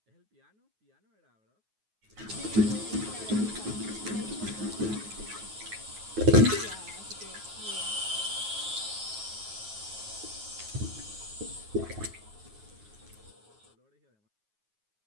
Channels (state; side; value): late; left; 9.4 ms